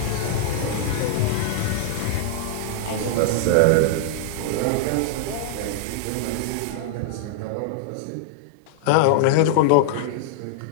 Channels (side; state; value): both; different; correlation -0.01